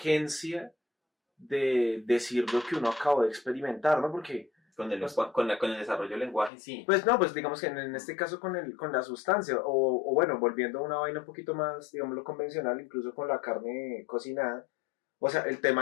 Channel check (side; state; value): right; drops out; at 6.5 s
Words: de decir lo que uno acabó de experimentar, ¿no? Porque con el desarrollo del lenguaje, sí. Pues no, pues digamos que en este caso con la sustancia, o bueno, volviendo a una vaina un poquito más, digamos, lo convencional, incluso con la carne cocinada, o sea, el